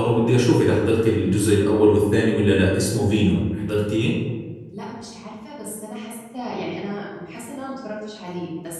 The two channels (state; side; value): identical; both; correlation 1.00